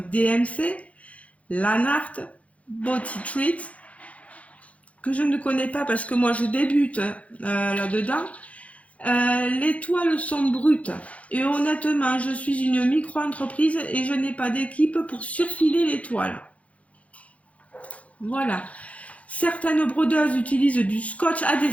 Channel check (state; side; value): late; right; 0.065 ms